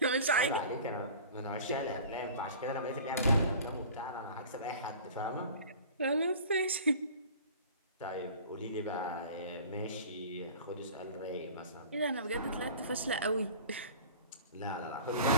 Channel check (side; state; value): both; inverted; correlation -0.41